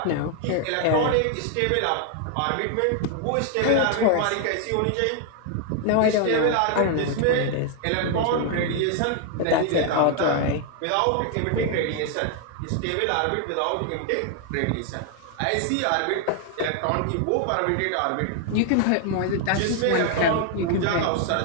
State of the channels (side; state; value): both; different; correlation 0.00